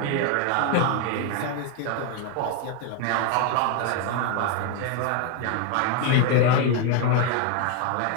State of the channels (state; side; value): different; both; correlation 0.01